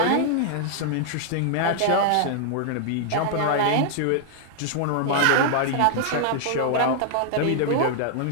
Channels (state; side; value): different; both; correlation -0.01